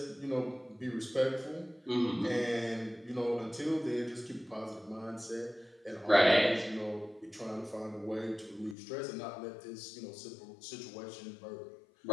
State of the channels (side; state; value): right; drops out; at 8.8 s